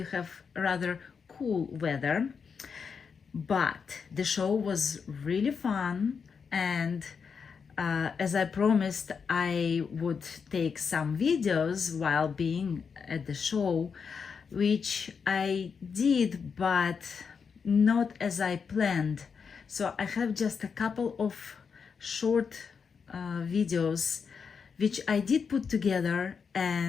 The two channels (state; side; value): quieter; right; 6.0 dB